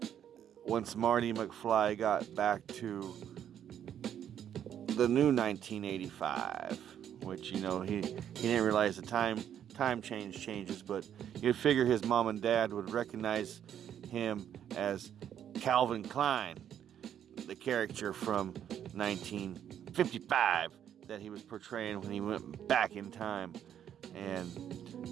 once Marty McFly got back to the new 1985, which, you know, he didn't realize the time changes, but you'd figure his mom and dad would recognize him as Calvin Klein, the character from 1955 that he was portraying when he went back in time.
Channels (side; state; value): left; quieter; 9.7 dB